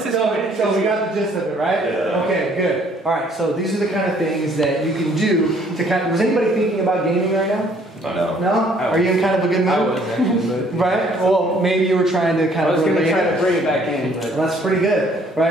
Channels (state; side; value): normal; both; correlation 0.61